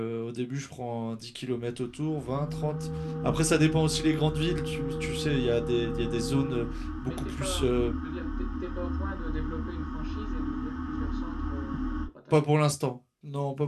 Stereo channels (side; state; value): both; identical; correlation 1.00